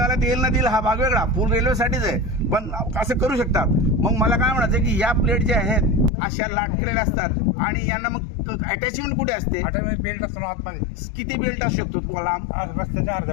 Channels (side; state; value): right; drops out; at 6.1 s